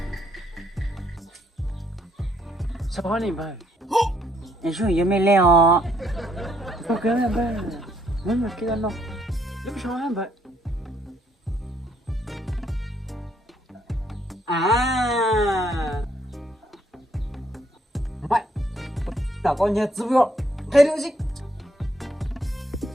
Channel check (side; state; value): both; normal; correlation 0.70